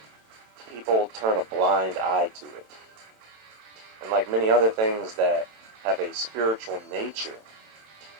people turn a blind eye to it. And like many other things that have a spiritual nature,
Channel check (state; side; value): late; left; 27 ms